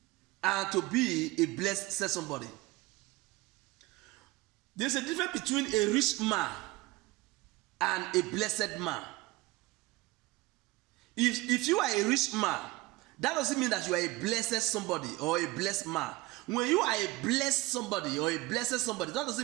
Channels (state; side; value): quieter; left; 20.2 dB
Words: and to be a blessed, said somebody. There's a difference between a rich man and a blessed man. If you are a rich man, that doesn't mean that you are a blessed somebody or a blessed man. When you are a blessed somebody or a blessed somebody, that